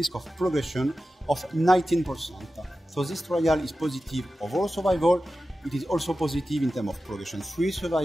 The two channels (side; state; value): both; normal; correlation 0.94